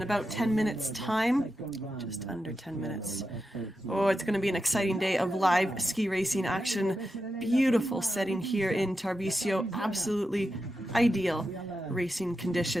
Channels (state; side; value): normal; both; correlation 0.89